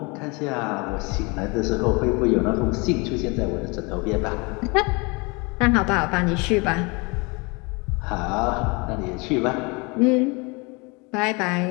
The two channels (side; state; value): right; quieter; 28.6 dB